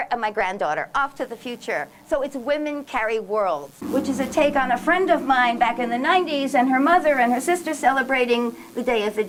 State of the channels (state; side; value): identical; both; correlation 1.00